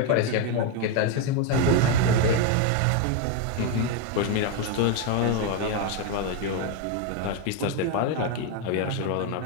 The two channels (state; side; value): different; both; correlation 0.02